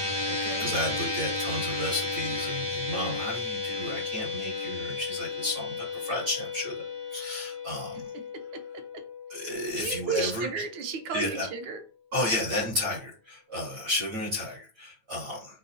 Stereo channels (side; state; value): left; late; 9.0 ms